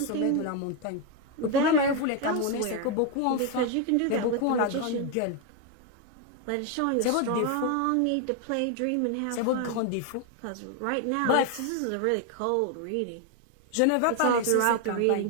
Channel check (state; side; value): different; both; correlation 0.01